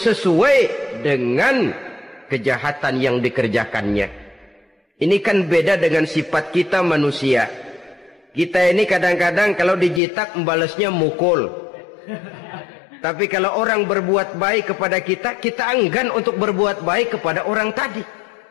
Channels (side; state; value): right; drops out; at 10.0 s